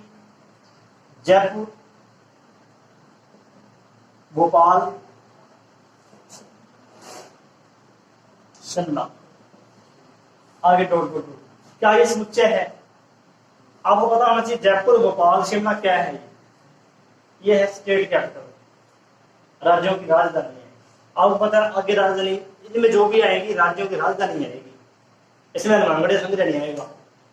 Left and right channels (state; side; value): identical; both; correlation 1.00